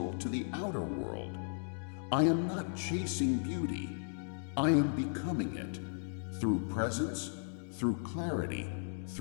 to the outer world. I am not chasing beauty. I am becoming it, through presence, through clarity,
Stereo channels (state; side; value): silent; right; digital silence